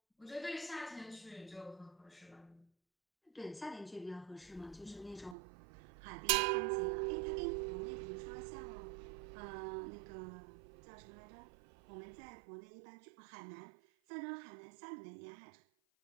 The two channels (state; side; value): drops out; left; at 5.4 s